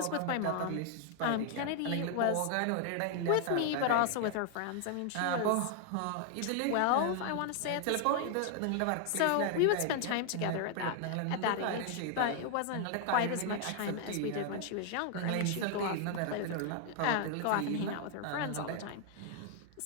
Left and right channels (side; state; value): both; different; correlation 0.00